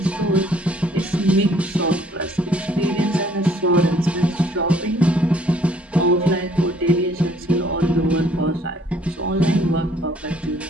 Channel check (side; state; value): both; normal; correlation 0.61